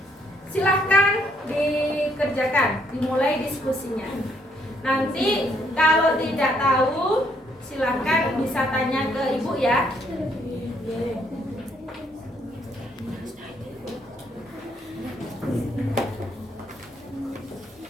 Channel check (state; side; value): normal; both; correlation 0.70